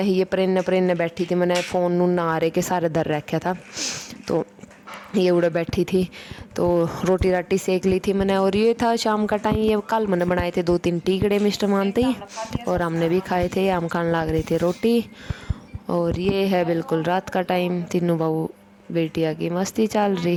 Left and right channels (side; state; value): both; identical; correlation 1.00